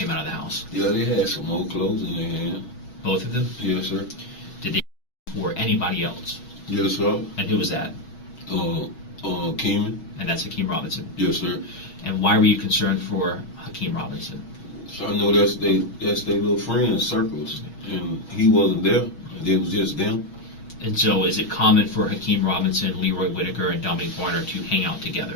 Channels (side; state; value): right; late; 6.3 ms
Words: out of the house? Yeah, they had some old clothes in their hand. Both of them? Yes, sir. Did they for anybody else? Yes, sir. And who was that? Keeman. And that's Hakeem Robinson. Yes, sir. And why were you concerned for Hakeem Robinson? So I know that's their little friends circles, and he wasn't there. It was just them. And so is it common for Hakeem Robinson, Leroy Whitaker, and Dominique Barner to hang out